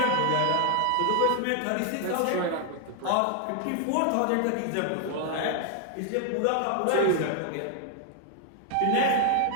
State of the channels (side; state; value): both; different; correlation 0.00